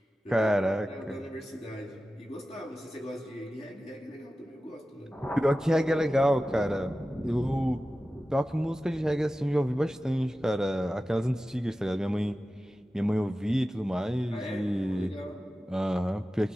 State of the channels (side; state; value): both; normal; correlation 0.95